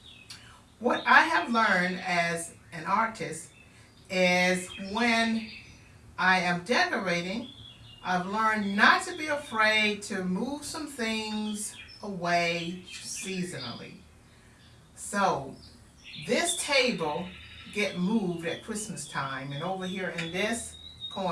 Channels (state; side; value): identical; both; correlation 1.00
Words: what I have learned as an artist is when I am decorating, I've learned not to be afraid to move some things away seasonally. So this table get moved at Christmas time, and over here in this